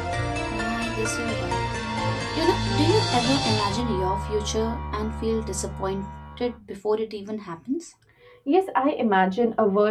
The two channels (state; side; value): identical; both; correlation 1.00